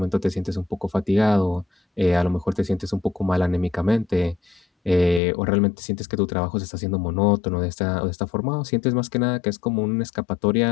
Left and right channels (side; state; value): right; drops out; at 5.2 s